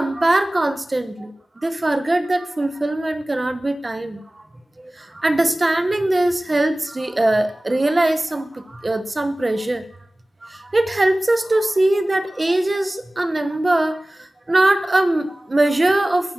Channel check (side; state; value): both; normal; correlation 0.98